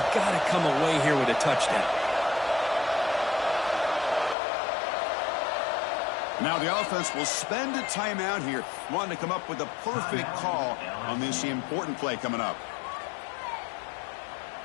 got to come away here with a touchdown. Now the offense will spend a timeout here, wanting to come up with a perfect call on this important play coming up.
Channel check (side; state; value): right; drops out; at 4.4 s